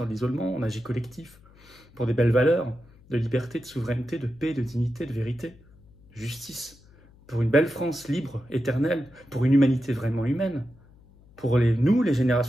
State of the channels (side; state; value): left; noise; hum, 27 dB below the sound